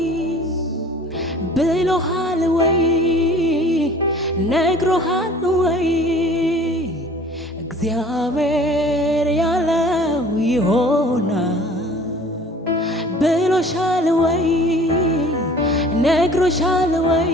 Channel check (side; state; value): both; normal; correlation 0.48